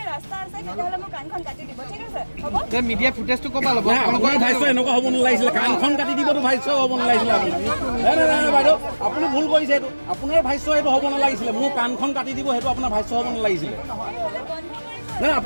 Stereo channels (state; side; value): inverted; both; correlation -1.00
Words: ৰাস্তা আছে তেতিয়াহ'লে মোক কাণখন কাটি দিব ঠিক আছে হ'ব মিডিয়া ফুটেজটো ক'বা ল'ব আপোনাৰ ভাইছ এনেকুৱা হ'ব নালাগিছিলে কাণখন কাটি দিবতো ভাইছ হ'ব নালাগিছিলে আপুনি নাই নাই নাই বাইদেউ আপুনি ভুল কৰিছে এইটো আপোনাৰ ভাইছ এইটো হ'ব নালাগিছিলে মোৰ কাণখন কাটি দিব সেইটো আপোনাৰ ভাইছ হ'ব নালাগিছিলে নাই